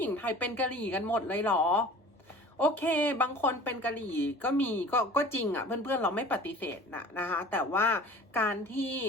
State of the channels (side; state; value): both; normal; correlation 0.43